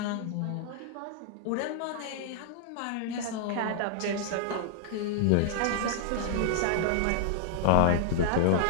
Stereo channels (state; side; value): different; both; correlation -0.01